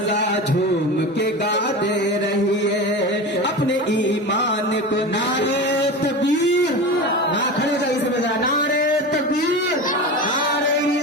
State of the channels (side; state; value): both; normal; correlation 0.27